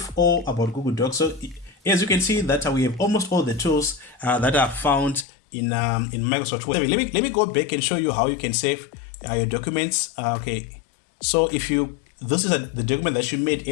all about Google Docs. So as you can see that we have almost all the tools that are found in Microsoft Word. Let me go back and show you how you can save your documents. Okay, so if you, this is the document that you made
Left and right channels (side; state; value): right; drops out; at 5.2 s